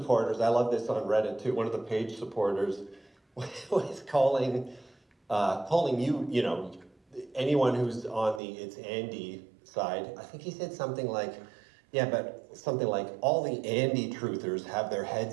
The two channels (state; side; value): drops out; left; at 8.4 s